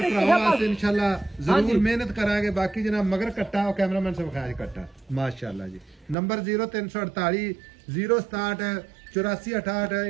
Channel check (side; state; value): left; drops out; at 6.2 s